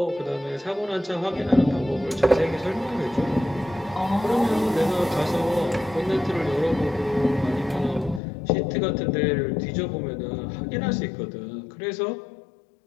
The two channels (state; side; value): drops out; right; at 8.2 s